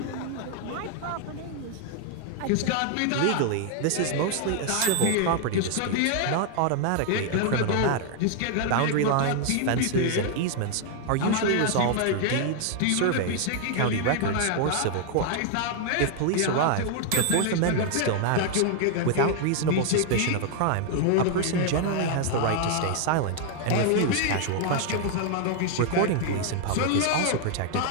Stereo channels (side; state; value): both; different; correlation 0.00